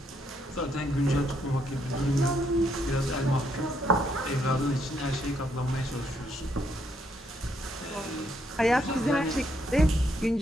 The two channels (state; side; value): normal; both; correlation 0.74